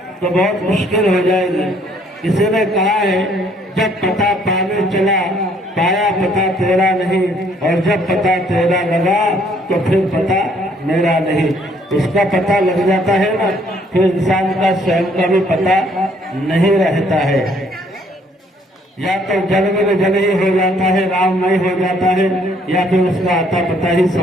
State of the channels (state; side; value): normal; both; correlation 0.64